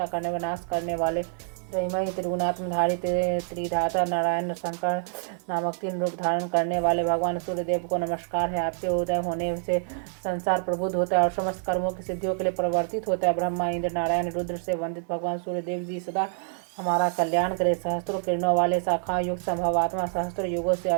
करने व नाश करने वाले, त्रयमयी त्रिगुणात्मधारी त्रिधाता नारायण शंकर नामक 3 रूप धारण करने वाले भगवान सूर्यदेव को नमस्कार है। आपके उदय होने से संसार प्रबुद्ध होता है और समस्त कर्मों की सिद्धियों के लिए परिवर्तित होता है। ब्रह्मा, इंद्र, नारायण, रुद्र से वंदित भगवान सूर्यदेव जी सदा हमारा कल्याण करे। सहस्त्रों किरणों वाले, शाखा युक्त, संभवात्मा, सहस्त्र युगों से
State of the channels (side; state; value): left; silent; digital silence